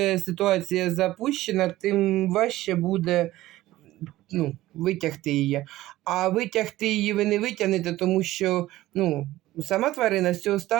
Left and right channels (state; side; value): quieter; left; 16.2 dB